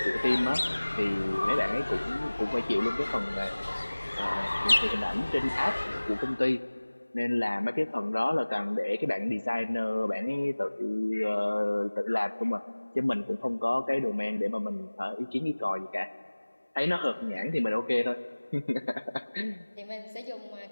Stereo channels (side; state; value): both; inverted; correlation -1.00